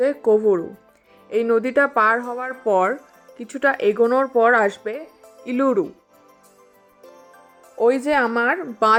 কোভরু। এই নদীটা পার হওয়ার পর কিছুটা এগোনোর পর আসবে ইলুরু। ওই যে আমার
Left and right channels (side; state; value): both; identical; correlation 1.00